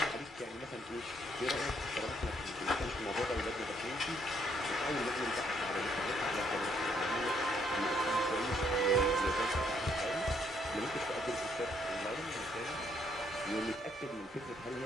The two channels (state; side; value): normal; both; correlation 0.70